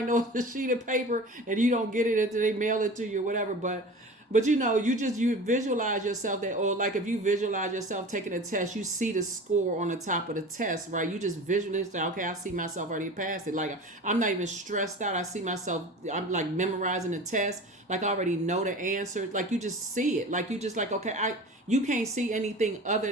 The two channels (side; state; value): both; normal; correlation 0.36